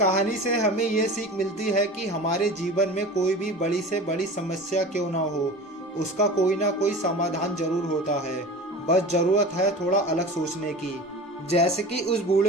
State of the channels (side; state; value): both; normal; correlation 0.35